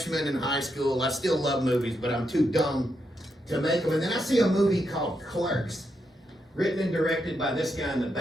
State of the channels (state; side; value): normal; both; correlation 0.82